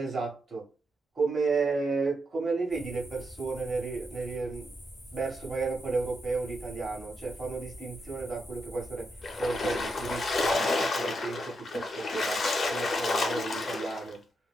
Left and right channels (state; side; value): normal; both; correlation 0.82